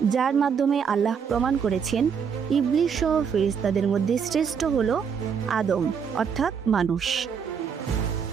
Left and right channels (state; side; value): quieter; left; 6.8 dB